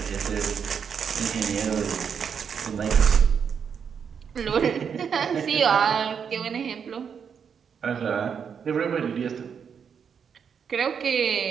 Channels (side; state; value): left; quieter; 7.0 dB